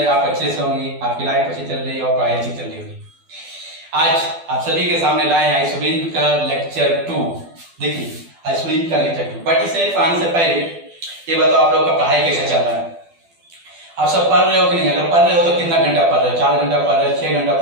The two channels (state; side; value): late; left; 12 ms